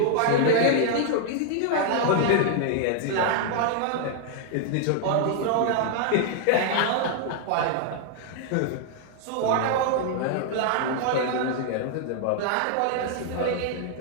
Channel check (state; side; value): different; both; correlation -0.01